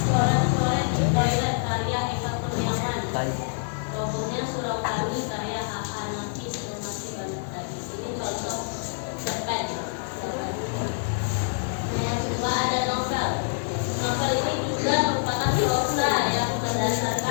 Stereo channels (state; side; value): silent; right; digital silence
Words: di toilet karya Eka Kurniawan, robohnya surau kami karya H.H. Nafis, dan masih banyak lagi. Ini contoh cerpen. Yang kedua ada novel. Novel ini juga merupakan prosa yang